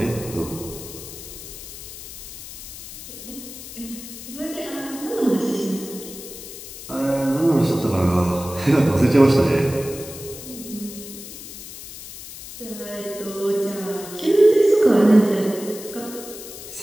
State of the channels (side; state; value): left; noise; hiss, 13 dB below the sound